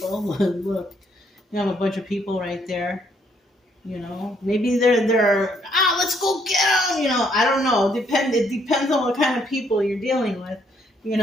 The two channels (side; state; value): both; normal; correlation 0.69